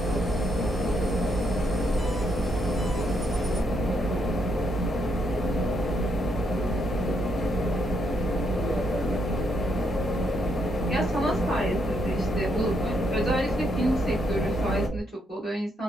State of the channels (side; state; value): both; normal; correlation 0.76